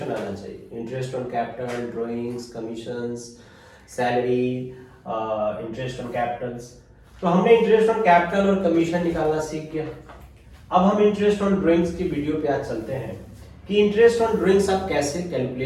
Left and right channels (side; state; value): both; identical; correlation 1.00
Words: आना चाहिए। Interest on capital, drawings, commissions, salary, interest on Capitals. तो हमने इंटरेस्ट ऑन कैपिटल और कमीशन निकालना सीख गया। अब हम इंटरेस्ट ऑन ड्राइंग्स की वीडियो पे आज चलते हैं कि इंटरेस्ट ऑन ड्राइंग्स आप कैसे